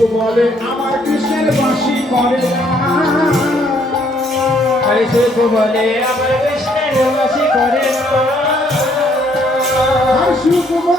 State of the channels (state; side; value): normal; both; correlation 0.67